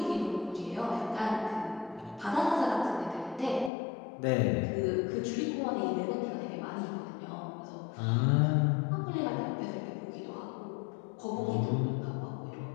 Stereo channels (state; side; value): drops out; right; at 3.7 s